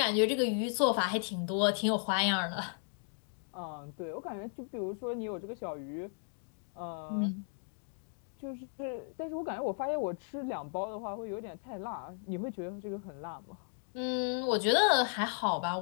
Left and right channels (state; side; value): silent; right; 54 dB below the other